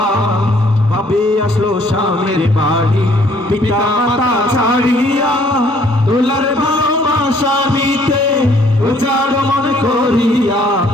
ভাবে আসলো স্বামীর বাড়ি পিতা মাতা ছাড়িয়া দোলার ভালোবাসা নিতে উজাড় মনে করিয়া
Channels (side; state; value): both; normal; correlation 0.62